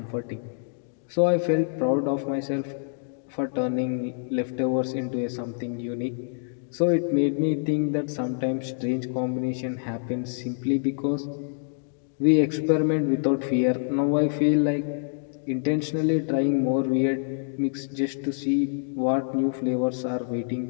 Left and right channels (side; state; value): right; silent; digital silence